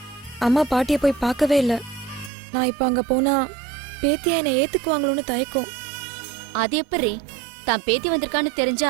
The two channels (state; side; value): drops out; left; at 2.3 s